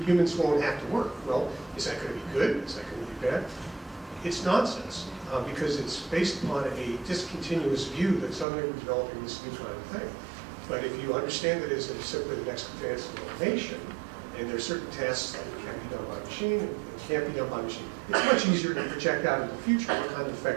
humans won't have to work. Well, is that going to be good? Is that going to be bad? It's nonsense, because it's based upon a discontinuous view that suddenly we're developing this new kind of thing. But if you understand that as simply the next advance in automation, and there are certain tasks that can be done by machine and can't be done by machine, it's much easier to project out into the future what kind of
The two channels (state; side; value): drops out; left; at 8.5 s